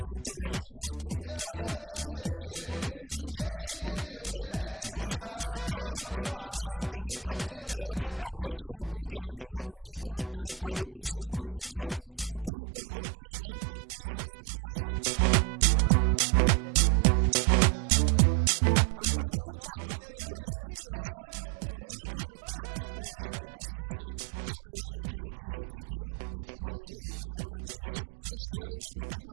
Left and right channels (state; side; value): drops out; left; at 12.5 s